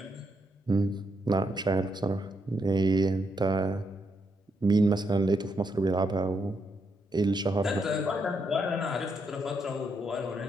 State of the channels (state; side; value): normal; both; correlation 0.79